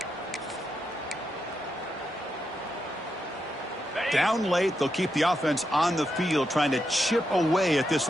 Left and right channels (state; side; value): normal; both; correlation 0.84